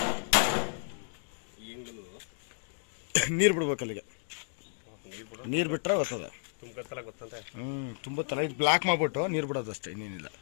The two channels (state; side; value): silent; right; digital silence